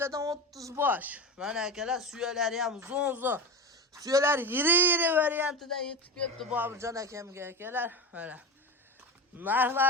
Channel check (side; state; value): both; normal; correlation 0.23